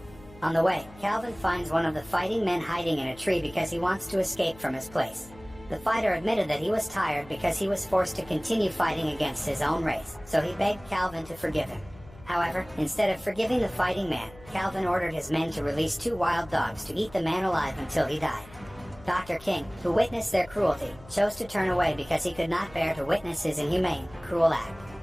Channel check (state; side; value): noise; left; hum, 21 dB below the sound